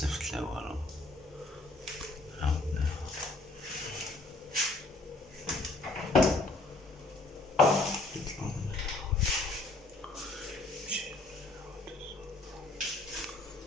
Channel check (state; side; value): quieter; right; 3.1 dB